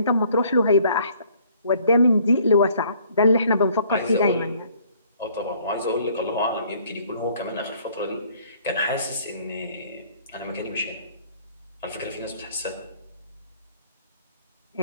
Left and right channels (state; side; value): inverted; both; correlation -0.60